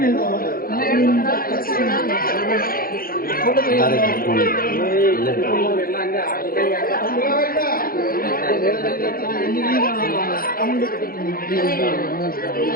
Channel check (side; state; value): right; late; 0.42 ms